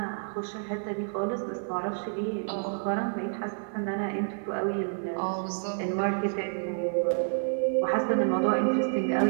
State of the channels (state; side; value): silent; left; digital silence